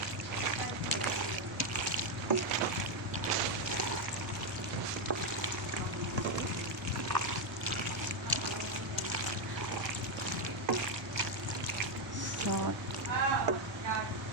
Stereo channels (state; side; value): normal; both; correlation 0.04